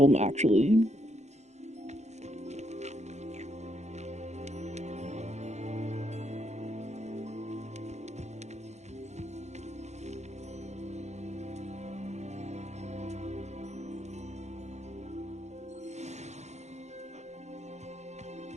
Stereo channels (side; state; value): left; late; 0.33 ms